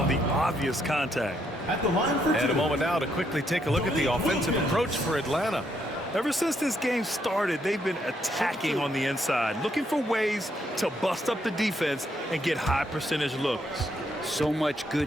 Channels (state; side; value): normal; both; correlation 0.75